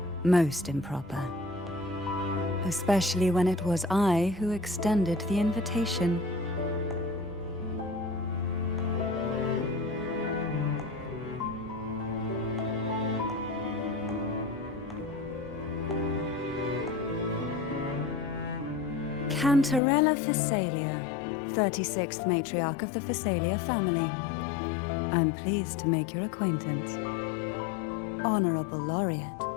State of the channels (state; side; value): drops out; right; at 19.8 s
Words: most improper. Especially when it was I who extended the invitation. Cantarella Phasalia, 36th matriarch of the Phasalia family. I'm pleased to make your acquaintance. Honorable Laureate,